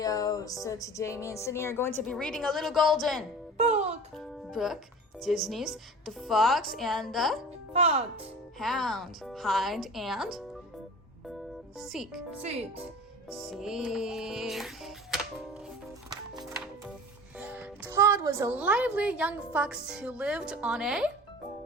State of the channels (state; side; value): normal; both; correlation 0.38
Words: So today me and Sydney are going to be reading a little golden book, Disney's The Fox and the Hound, Hide and Seek. Todd was a lively young fox who lived on a